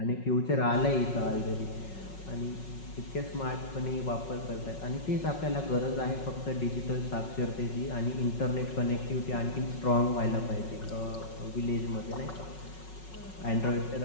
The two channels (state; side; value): late; right; 5.4 ms